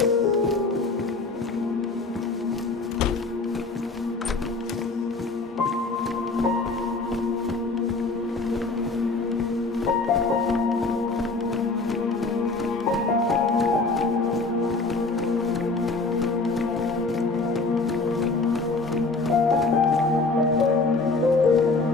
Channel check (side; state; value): right; quieter; 3.7 dB